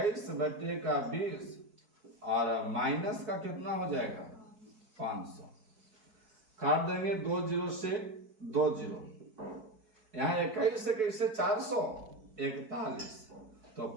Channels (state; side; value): late; left; 4.6 ms